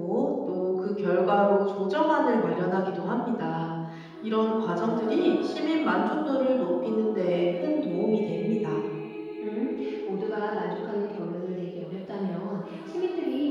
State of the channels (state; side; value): identical; both; correlation 1.00